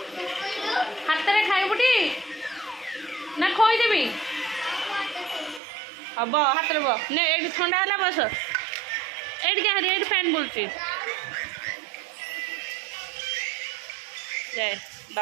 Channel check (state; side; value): drops out; left; at 5.6 s